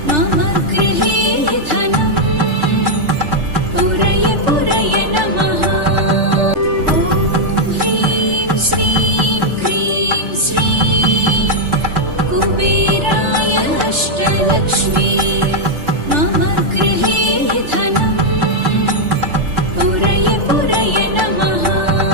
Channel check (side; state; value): left; late; 3.3 ms